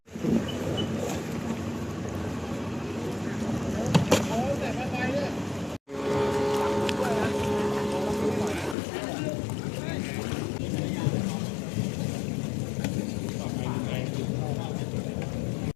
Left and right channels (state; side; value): drops out; right; at 8.8 s